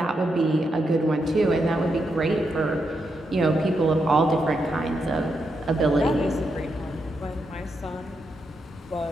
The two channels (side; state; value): both; normal; correlation 0.83